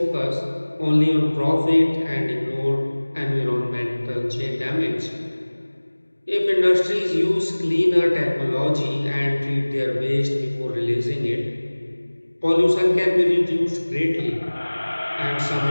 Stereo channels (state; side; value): inverted; both; correlation -1.00